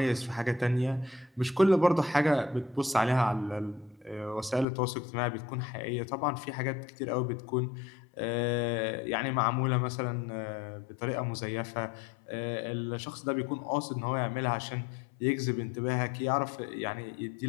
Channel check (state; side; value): drops out; right; at 4.7 s